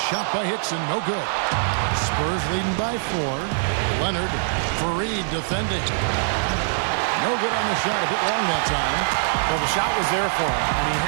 by Hickson, no good. Spurs leading by 4. Leonard, Fareed defending. No good on the shot, a bit long that time. Well, the shot was there for him, and he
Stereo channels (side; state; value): left; silent; digital silence